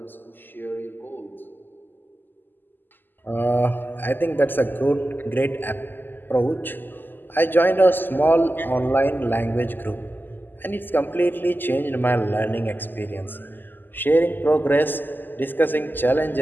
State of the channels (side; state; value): right; late; 0.091 ms